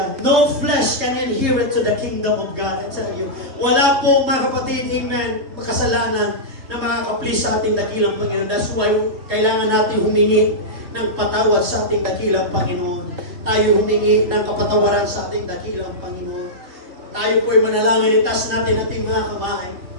No flesh can inherit to the kingdom of God. I tell you. Wala po, mga kapatid, amen, makasalanan na makakaplis sa ating dakilang Panginoon. That's why kailangan natin humingi ng patawad sa ating dakilang Panginoon. Tayo humingi ng kapatawaran sa ating dakilang Panginoon. Tayo po'y manalangin, itas natin ating mga kamay.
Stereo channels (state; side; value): late; left; 3.2 ms